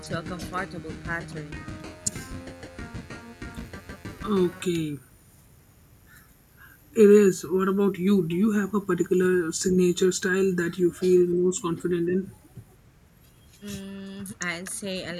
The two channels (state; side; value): identical; both; correlation 1.00